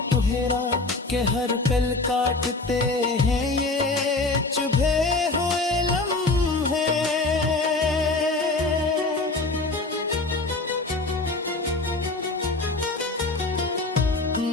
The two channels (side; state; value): right; quieter; 3.3 dB